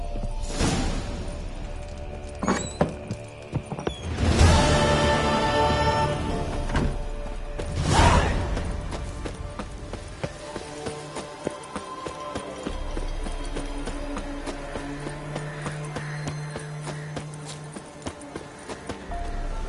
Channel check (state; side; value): identical; both; correlation 1.00